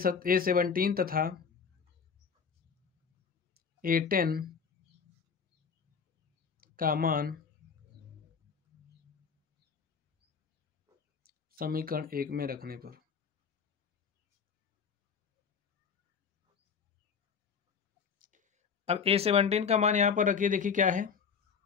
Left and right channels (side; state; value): right; quieter; 6.2 dB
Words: तथा A10 का मान समीकरण 1 में रखने पर अब A17 का मान यहां पर रखिए, देखिए क्या है,